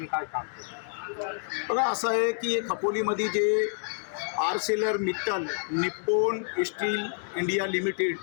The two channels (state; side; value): silent; right; digital silence